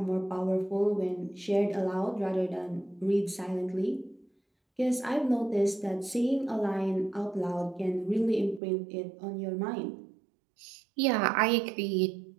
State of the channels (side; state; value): left; drops out; at 8.6 s